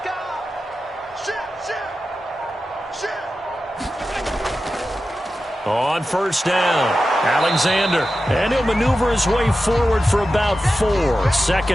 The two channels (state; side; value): normal; both; correlation 0.92